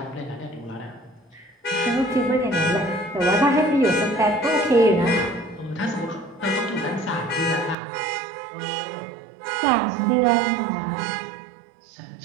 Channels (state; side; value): drops out; left; at 7.8 s